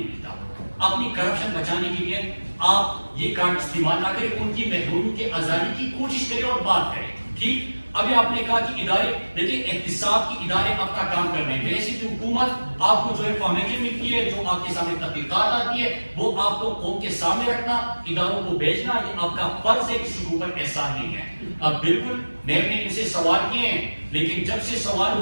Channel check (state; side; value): inverted; both; correlation -1.00